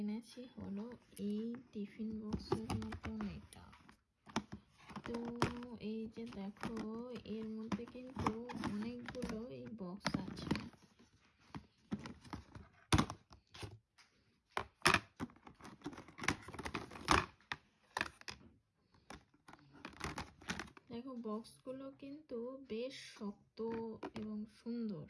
হলো এই টিফিন বক্সের মতন এটা। তো এই যে দেখো এর মধ্যে কিন্তু অনেকগুলো এই বক্স আছে। দেখো বক্সগুলো কিন্তু বেশ শক্ত এবং সুন্দর।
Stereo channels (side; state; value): both; identical; correlation 1.00